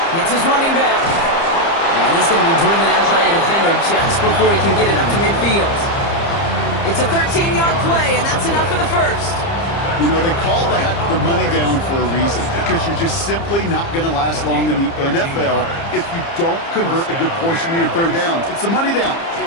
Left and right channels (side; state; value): right; late; 30 ms